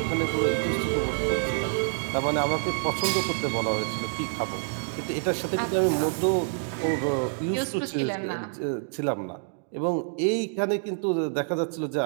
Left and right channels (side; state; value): left; silent; digital silence